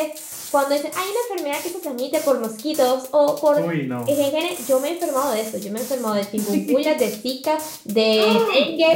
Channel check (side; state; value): both; identical; correlation 1.00